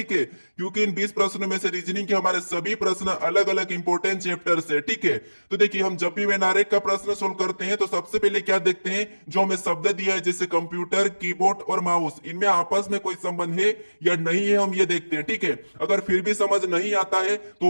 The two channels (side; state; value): both; inverted; correlation -1.00